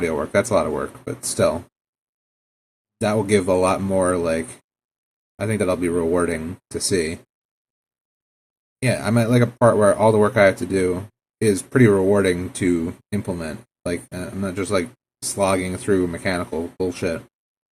work. That's a lot of work, but still, that will give a lot more. I think that'll be rewarding to see. Yeah, I'm at a part where all the work I have to do is pretty rewarding to implement. I'm not just slogging through mechanical bullshit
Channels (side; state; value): both; identical; correlation 1.00